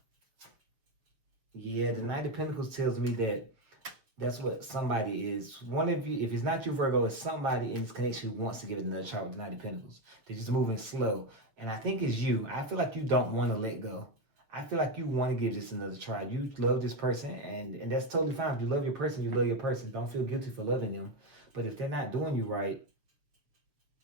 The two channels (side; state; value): left; late; 6.8 ms